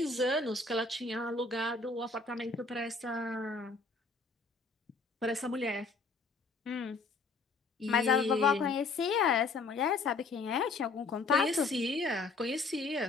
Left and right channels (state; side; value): quieter; right; 3.9 dB